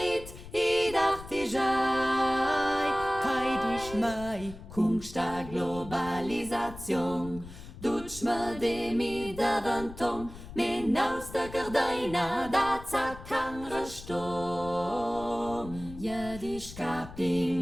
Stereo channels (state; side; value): noise; left; rumble, 14 dB below the sound